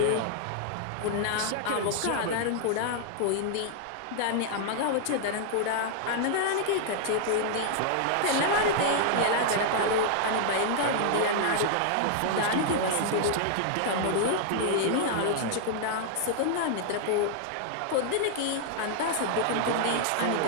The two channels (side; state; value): both; different; correlation -0.01